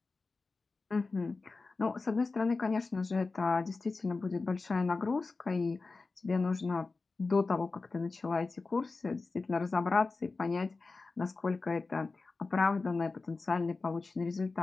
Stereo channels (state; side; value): quieter; right; 3.9 dB